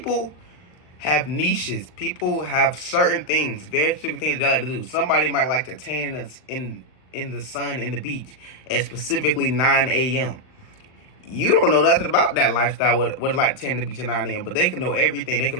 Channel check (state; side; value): late; right; 39 ms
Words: have niches. People have certain things, very specific things they like to do. Somebody might like to tan in the sun in the beach at specifically 9 a.m. You don't know nothing about that lifestyle, what it's like to tan in the beach at 9 a.m. But they can know everything. They can